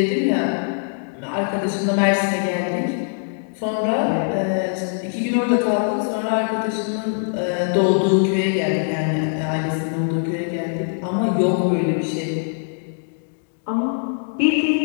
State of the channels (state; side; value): silent; right; digital silence